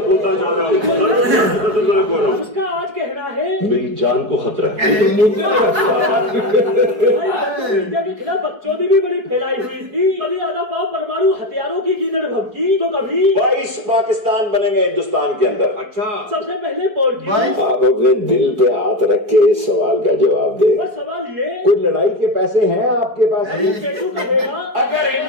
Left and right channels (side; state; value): left; late; 4.7 ms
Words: होता जा रहा हूँ। उसका आज कहना है मेरी जान को खतरा है। इंडिया के खिलाफ बकचोदी भी बड़ी फैलाई हुई थी। कभी आधा पाव परमाणु हथियारों की गीदड़ भभकी तो कभी 22 पाकिस्तान बनेंगे हिंदुस्तान के अंदर। अच्छा, सबसे पहले पोर्ट आप अपने दिल पे हाथ रख के इस सवाल का जवाब दे। और सवाल ये, कोई लड़ाई के पैसे हैं आपके पास? पेटू कहेगा अगर